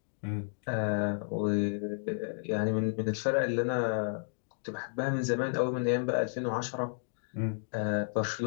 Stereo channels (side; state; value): right; silent; digital silence